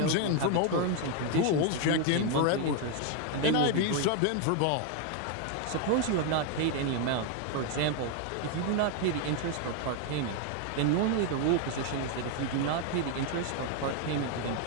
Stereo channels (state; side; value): different; both; correlation 0.01